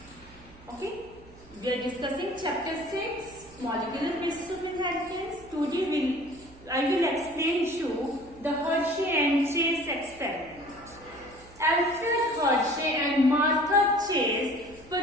Okay, we are discussing chapter 6, molecular basis of inheritance. Today I will explain to you the Hershey and Chase experiment. Alfred Hershey and Martha Chase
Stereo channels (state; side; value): noise; right; hum, 23 dB below the sound